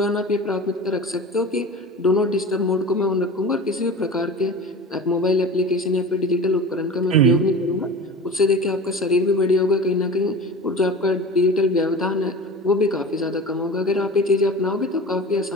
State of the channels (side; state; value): both; normal; correlation 0.34